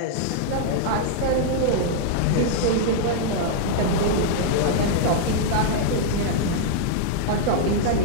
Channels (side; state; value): both; different; correlation -0.01